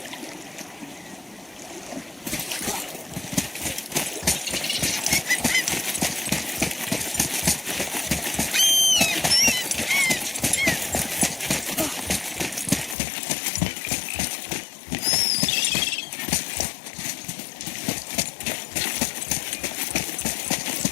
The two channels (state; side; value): drops out; right; at 13.0 s